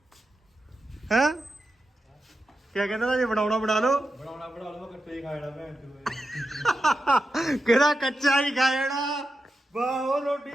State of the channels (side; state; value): both; normal; correlation 0.89